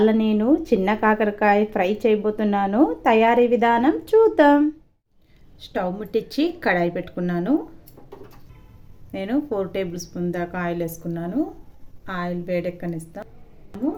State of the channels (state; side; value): identical; both; correlation 1.00